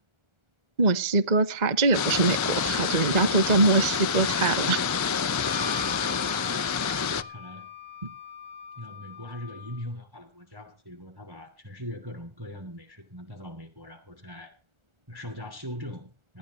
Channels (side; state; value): left; late; 1.4 ms